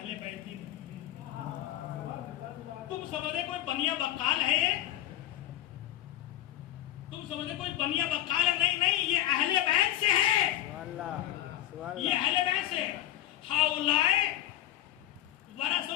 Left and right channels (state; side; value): quieter; right; 13.2 dB